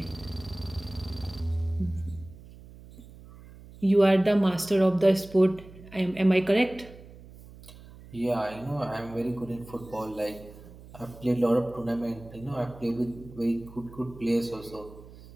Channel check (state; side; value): noise; right; hum, 19 dB below the sound